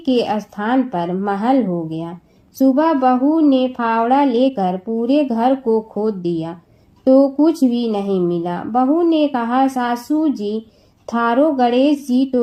स्थान पर महल हो गया। सुबह बहू ने फावड़ा लेकर पूरे घर को खोद दिया तो कुछ भी नहीं मिला। बहू ने कहा, सासू जी, थारो गणेश जी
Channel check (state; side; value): identical; both; correlation 1.00